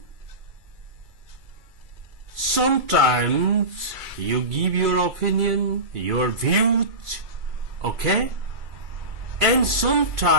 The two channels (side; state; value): left; late; 2.3 ms